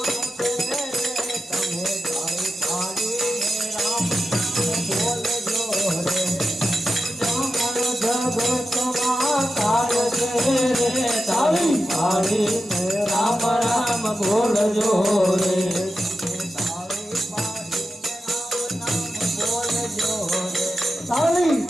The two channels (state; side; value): normal; both; correlation 0.90